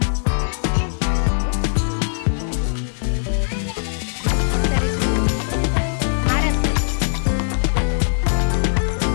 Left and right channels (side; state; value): right; silent; digital silence